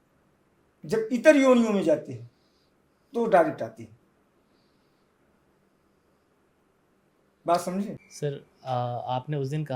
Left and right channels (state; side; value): identical; both; correlation 1.00